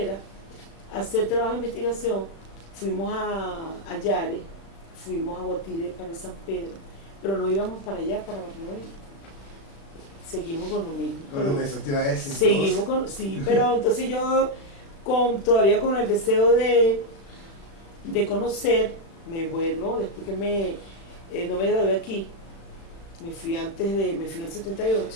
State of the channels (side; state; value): right; late; 35 ms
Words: a hacer trabajo de investigación. Fuimos a Yare, fuimos a Guatire para San Pedro, pero no íbamos para allá, para Barlovento. Seguimos con lo mismo. Con eso te iba a decir. Seguimos con, sí, pero entonces yo todavía con el deseo de conocer, me vuelvo, después que no me gradué aquí, me fui en el